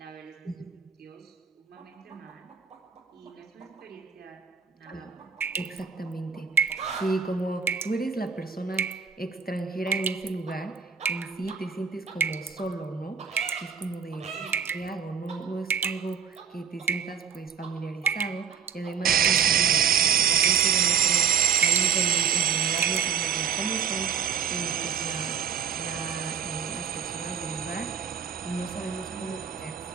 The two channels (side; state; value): left; quieter; 7.0 dB